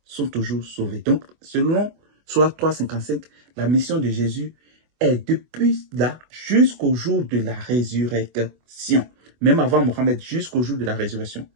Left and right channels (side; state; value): left; late; 24 ms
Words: sont toujours sauvés. Donc, selon Sourate 3:55, la mission de Jésus est depuis là jusqu'au jour de la résurrection. Même avant Mohammed, jusqu'au jour de la résurrection.